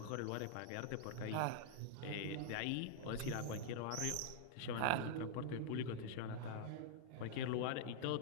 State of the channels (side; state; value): both; different; correlation -0.01